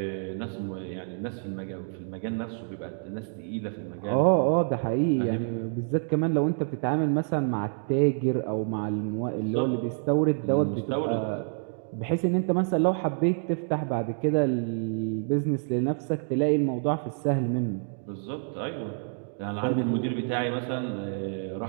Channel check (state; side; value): silent; left; 59 dB below the other